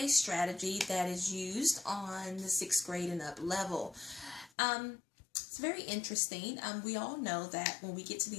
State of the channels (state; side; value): drops out; right; at 4.5 s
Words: strategy that is used on the 6th grade and up level. It's very interesting. We all know that when we get to